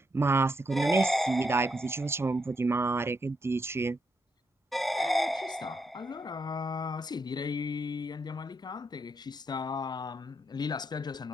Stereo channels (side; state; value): both; normal; correlation 0.79